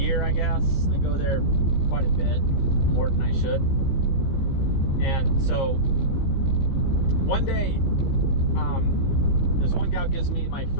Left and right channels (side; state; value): right; late; 15 ms